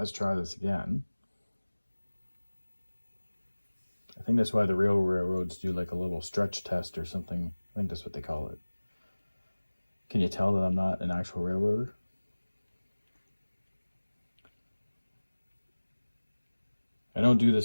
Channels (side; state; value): both; inverted; correlation -1.00